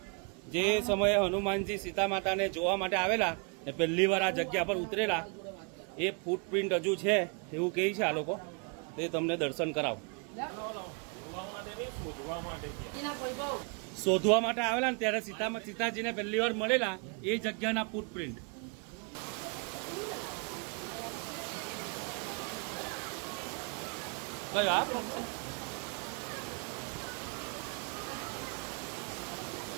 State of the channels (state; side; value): quieter; left; 35.4 dB